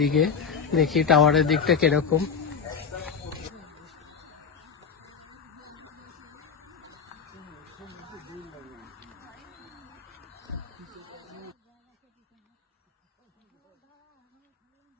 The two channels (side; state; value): right; quieter; 6.1 dB